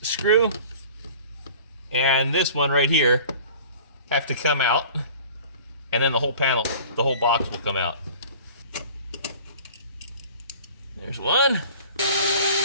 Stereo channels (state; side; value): inverted; both; correlation -0.45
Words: screw and this one right here have to come out, and then the whole panel, the whole box will come out. There's one